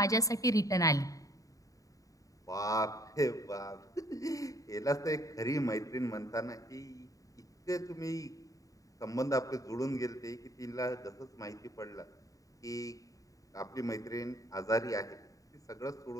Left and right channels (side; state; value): right; late; 0.16 ms